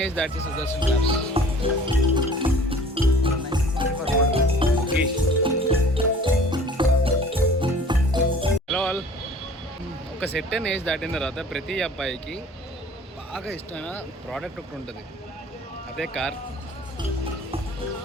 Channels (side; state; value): both; normal; correlation 0.48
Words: age that Sudarshan క్లాబ్స్. Hello all. ఒక సెట్ అండ్ ఏజ్ దాటిన తర్వాత ప్రతి అబ్బాయికి బాగా ఇష్టమైన ప్రోడక్ట్ ఒకటి ఉంటుంది, అదే కార్.